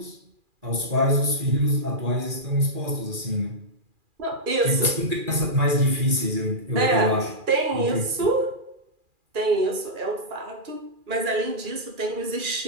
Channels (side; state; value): left; late; 2.4 ms